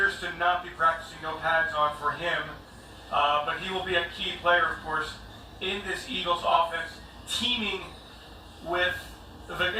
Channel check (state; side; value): identical; both; correlation 1.00